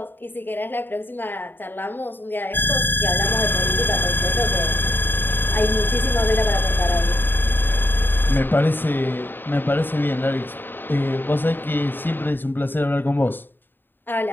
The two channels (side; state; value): right; late; 0.095 ms